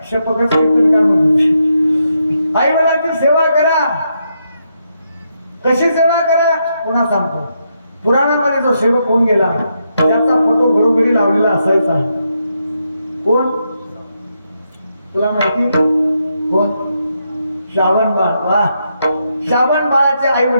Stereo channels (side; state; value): both; inverted; correlation -0.81